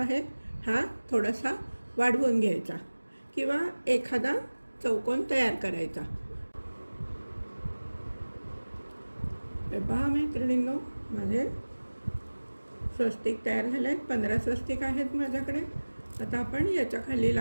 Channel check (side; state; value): both; inverted; correlation -1.00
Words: हा थोडासा वाढवून घ्यायचा किंवा एखादा चौकोन तयार करायचा. हे पहा मैत्रिणींनो, माझे स्वस्तिक तयार झाले आहेत. 15 स्वस्तिक आहेत माझ्याकडे. आता आपण याच्या खाली